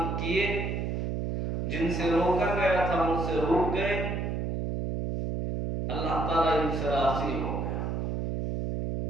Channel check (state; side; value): noise; right; hum, 1 dB below the sound